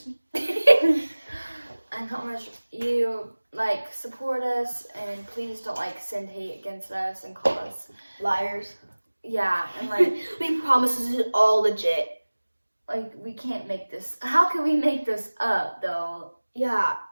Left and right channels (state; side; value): inverted; both; correlation -1.00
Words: me? And how much you like support us, and please don't like send hate against us and call us Liars. yeah, and like We promise this is all legit. we can't make this. How can we make this up though? Yeah.